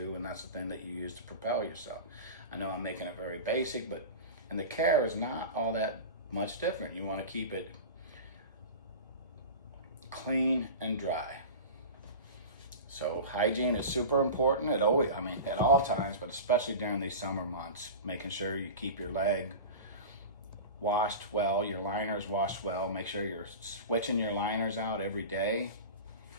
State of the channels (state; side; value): inverted; both; correlation -0.30